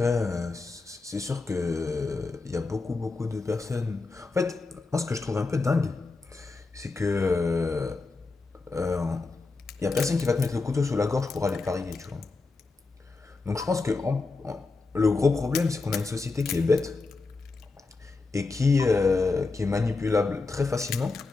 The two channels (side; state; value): right; quieter; 3.8 dB